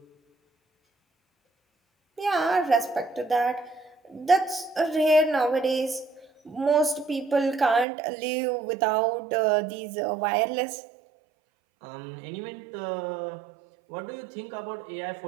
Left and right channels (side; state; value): left; drops out; at 7.9 s